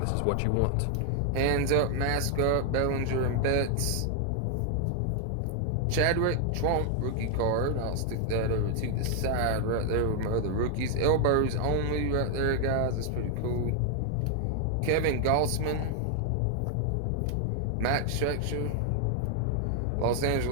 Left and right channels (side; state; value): both; different; correlation 0.00